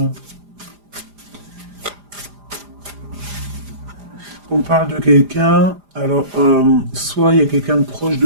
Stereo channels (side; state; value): left; late; 4.9 ms